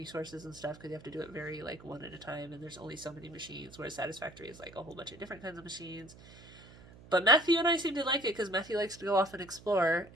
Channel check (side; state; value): right; noise; hum, 20 dB below the sound